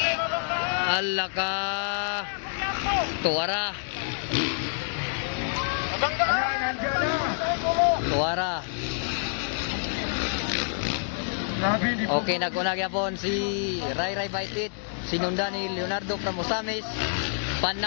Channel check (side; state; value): right; silent; digital silence